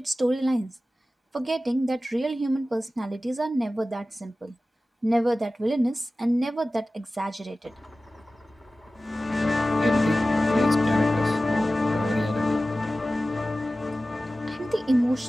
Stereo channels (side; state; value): both; normal; correlation 0.96